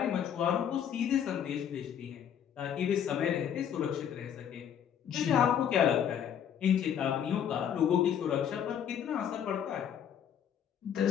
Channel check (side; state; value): right; quieter; 8.9 dB